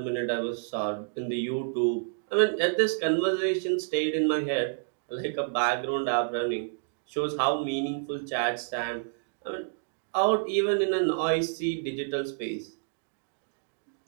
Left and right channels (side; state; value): left; silent; digital silence